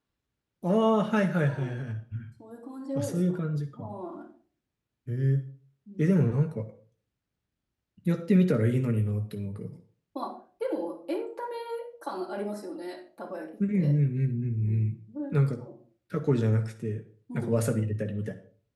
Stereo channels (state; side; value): identical; both; correlation 1.00